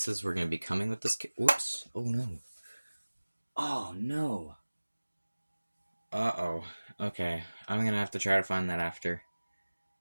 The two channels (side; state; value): both; inverted; correlation -1.00